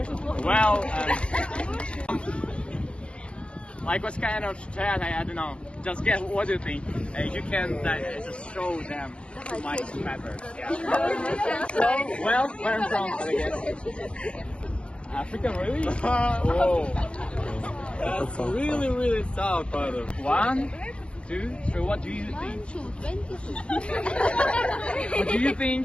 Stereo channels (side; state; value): right; late; 0.058 ms